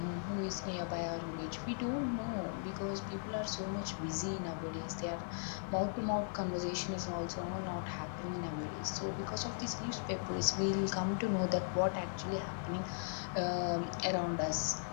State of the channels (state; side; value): silent; right; 52 dB below the other